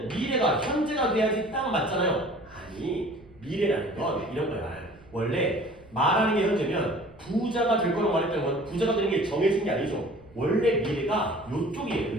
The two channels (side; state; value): right; noise; rumble, 25 dB below the sound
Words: 미래가 현재가 돼야지 딱 맞잖아요. 아니 미래라는 건 이런 거야. 원래 말하는 게 현재면 부자가 될 거라고 말했다는 건 부자가 되는 게 정해진 게 아니죠. 원래 미래가 요쪽이에요.